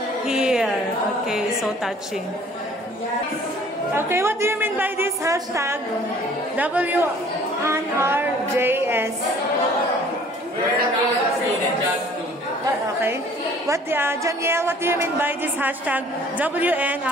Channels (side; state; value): both; normal; correlation 0.53